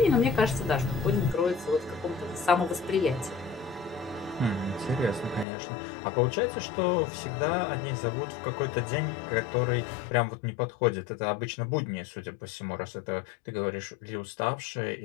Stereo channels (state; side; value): drops out; right; at 5.5 s